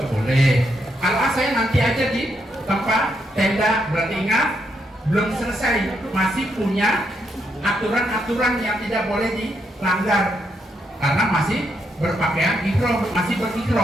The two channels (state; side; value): normal; both; correlation 0.79